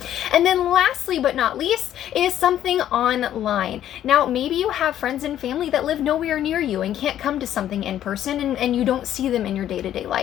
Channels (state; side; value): quieter; right; 11.3 dB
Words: And then lastly but not least is something online. Now, maybe you have friends and family that live nowhere near you and can't come to something in person and you don't see them in your day-to-day